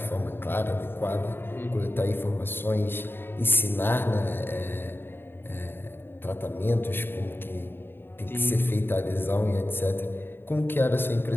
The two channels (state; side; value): late; right; 0.10 ms